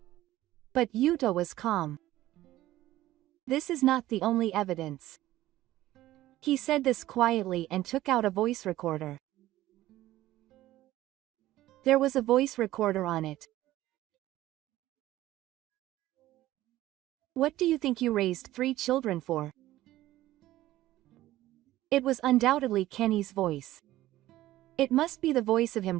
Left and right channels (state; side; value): quieter; left; 15.3 dB